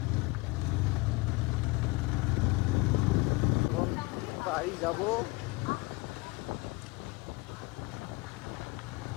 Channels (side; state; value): right; quieter; 24.3 dB